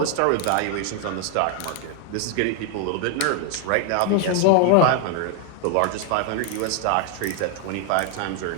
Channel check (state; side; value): different; both; correlation 0.00